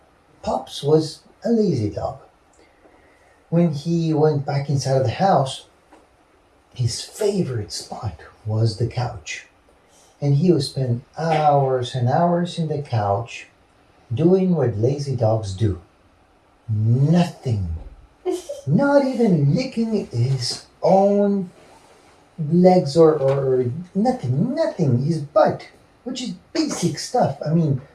Pops was a lazy dog. When he went back inside of the house, his favorite spot was the couch. And he would spend hours and hours in the couch doing what lazy dogs do. Nothing. Not even licking his own legs or nothing, his butt, which is basic stuff. I mean,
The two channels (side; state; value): both; identical; correlation 1.00